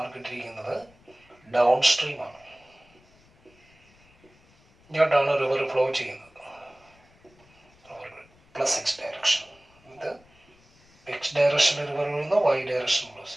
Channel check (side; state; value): left; noise; rumble, 30 dB below the sound